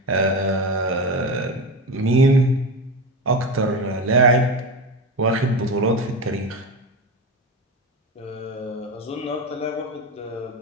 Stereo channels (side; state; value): both; normal; correlation 0.22